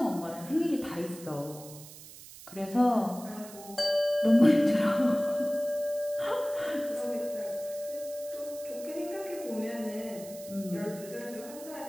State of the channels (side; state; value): right; noise; hiss, 16 dB below the sound